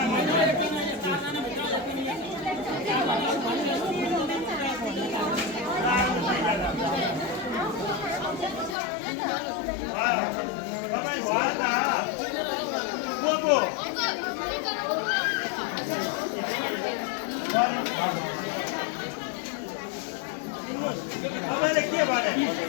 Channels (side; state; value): right; drops out; at 8.8 s